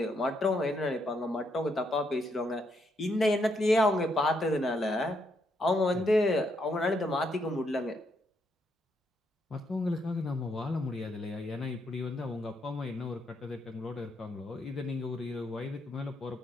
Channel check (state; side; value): normal; both; correlation 0.76